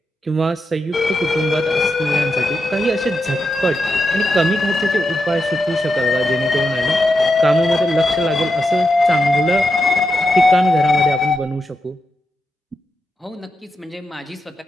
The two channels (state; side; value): normal; both; correlation 0.86